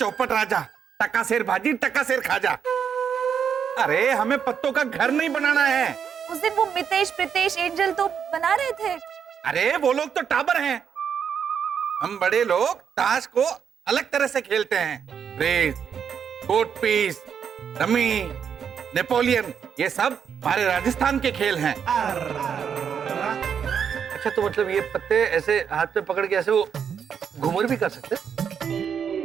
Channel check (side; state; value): left; quieter; 7.5 dB